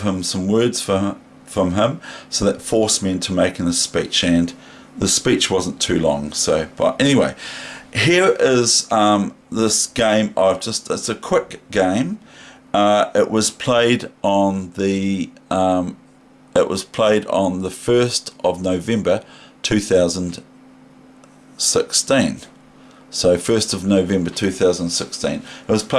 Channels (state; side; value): identical; both; correlation 1.00